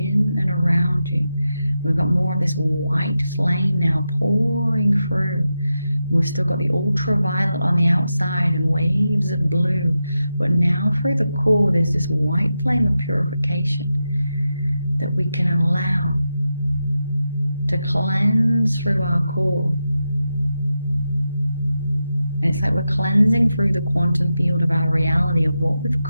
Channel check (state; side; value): inverted; both; correlation -0.89